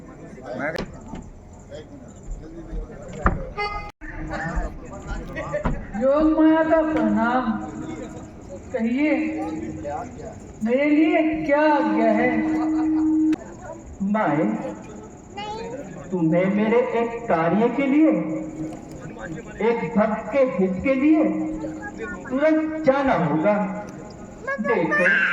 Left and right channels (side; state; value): both; identical; correlation 1.00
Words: योग माया का प्रणाम। कहिए मेरे लिए क्या आज्ञा है? माए, तुम्हें मेरे एक कार्य के लिए, एक भक्त के हित के लिए तुरंत जाना होगा। देखो,